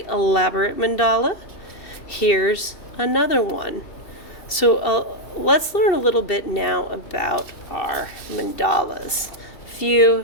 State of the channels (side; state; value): right; late; 2.7 ms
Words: elaborate mandala. Here's another one. So let's learn a little bit now about our mandalas. A